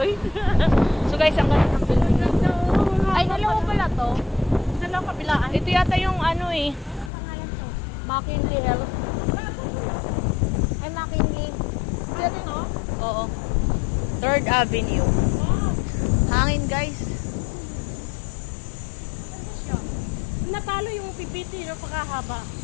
So guys, ang ganda ng building na to. Ay, dalawa pala to. Dalawa kabilaan. Ito yata yung ano eh. Pangalan to? McKinley Health. Ay, McKinley. Ano to? Oo. 3rd Avenue. Hangin guys. Natalo yung pipiti no, pagkahaba.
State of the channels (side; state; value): right; drops out; at 7.1 s